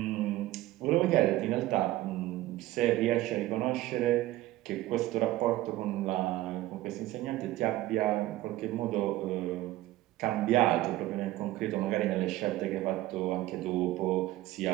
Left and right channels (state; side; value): quieter; left; 16.2 dB